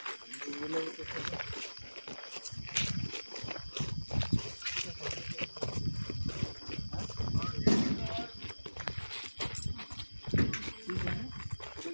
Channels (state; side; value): inverted; both; correlation -1.00